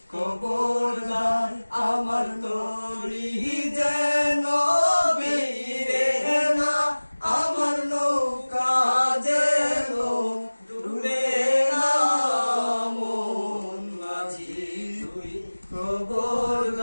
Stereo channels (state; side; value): inverted; both; correlation -1.00